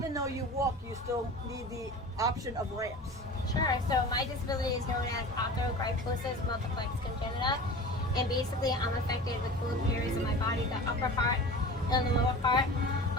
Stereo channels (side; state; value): both; normal; correlation 0.36